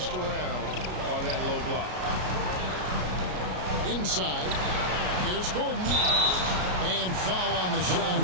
around on that low block. Inside. Here's Gordon. And foul on the shot.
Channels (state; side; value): late; left; 33 ms